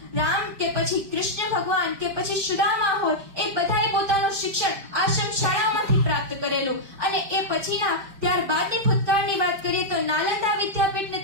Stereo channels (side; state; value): left; late; 5.0 ms